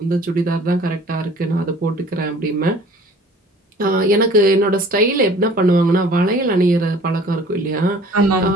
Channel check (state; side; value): normal; both; correlation 0.49